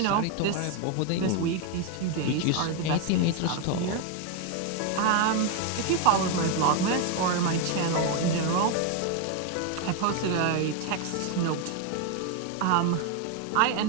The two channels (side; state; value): both; different; correlation 0.01